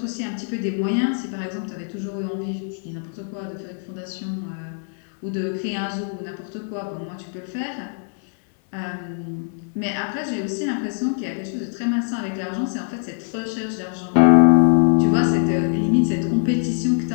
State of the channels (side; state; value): right; silent; 61 dB below the other